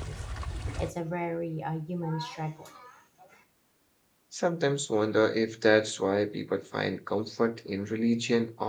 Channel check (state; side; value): identical; both; correlation 1.00